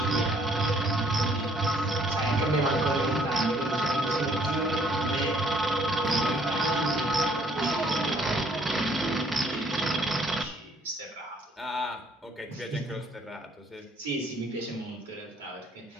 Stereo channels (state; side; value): normal; both; correlation 0.64